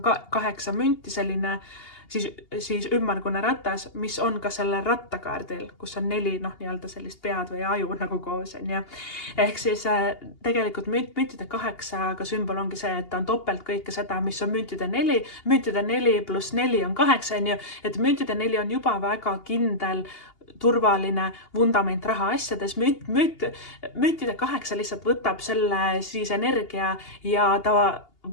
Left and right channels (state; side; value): late; right; 2.8 ms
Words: 8 münti, selline siis ümmargune ratas, mis on ka selle rattakaardil, kus on 4 nii-öelda sellist pead või aju nagu koos. Ehk siis tegelikult müntide 8 sümbol ongi see, et ta on topelt kõike seda, mis on müntide 4. Müntide 4 pluss 4 on 8, et müntide 4 on juba väga kindel turvaline vundament rahaasjades. Müntide 8 lihtsalt võtab selle siis energia ja ta